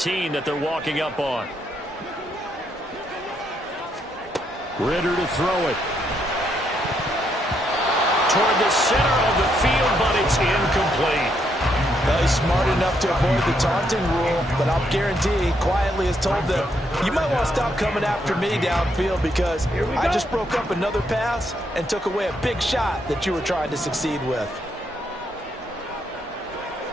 that they're walking up on. Ritter to throw it. Toward the center of the field, but it's incomplete. Well, he's smart enough to avoid the taunting rule, but I'll guarantee he quietly has told them, you might want to stop coming after me downfield because I just broke up another pass and took away a big shot that you were trying to succeed with.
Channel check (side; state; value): both; normal; correlation 0.76